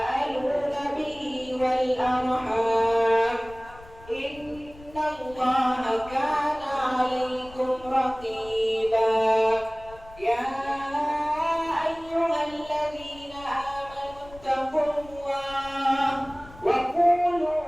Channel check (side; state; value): left; noise; rumble, 20 dB below the sound